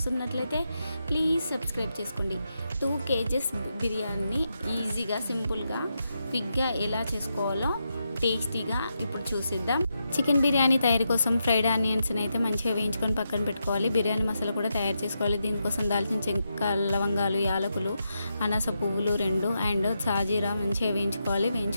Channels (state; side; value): inverted; both; correlation -0.85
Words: ప్లీజ్ సబ్స్క్రైబ్ చేసుకోండి. 2 kgs బిర్యానీ ఈజీగా సింపుల్గా క్విక్గా ఎలా చేసుకోవాలో టేస్టీగా ఇప్పుడు చూసిద్దాం. చికెన్ బిర్యానీ తయారీ కోసం ఫ్రైడ్ ఆనియన్స్ని అయితే మంచిగా వేయించుకొని పక్కన పెట్టుకోవాలి. బిర్యానీ మసాలా కూడా తయారు చేసుకోవాలి. దీనికోసం దాల్చిన చెక్క, లవంగాలు, యాలకులు, అనాస పువ్వులు 2 అండ్ సాజీరా మంచిగా వేయించుకోవాలి.